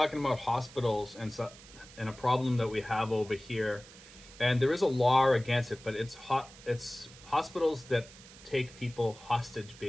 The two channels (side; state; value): right; noise; hiss, 20 dB below the sound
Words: about hospitals and a problem that we have over here. And there is a law against it, but it's hospitals that take people hostage